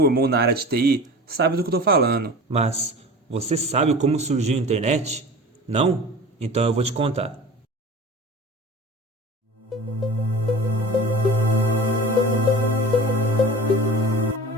na área de TI, sabe do que eu estou falando. Mas você sabe como surgiu a internet? Não? Então eu vou te contar.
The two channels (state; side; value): normal; both; correlation 0.37